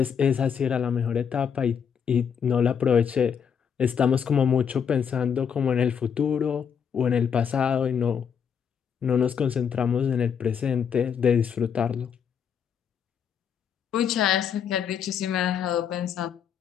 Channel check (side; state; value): right; quieter; 7.4 dB